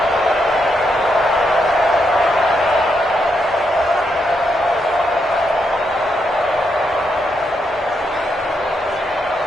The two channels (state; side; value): normal; both; correlation 0.80